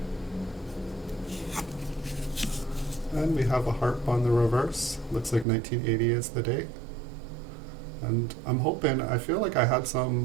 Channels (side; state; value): left; drops out; at 5.5 s